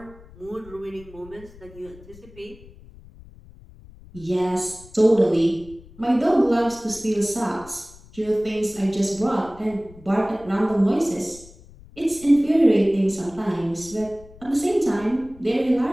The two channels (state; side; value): noise; left; rumble, 21 dB below the sound